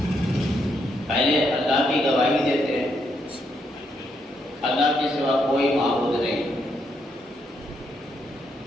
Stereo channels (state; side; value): normal; both; correlation 0.77